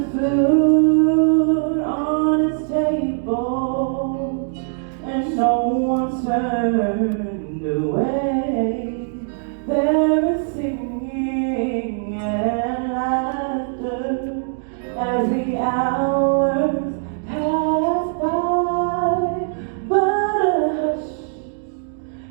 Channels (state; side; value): silent; left; digital silence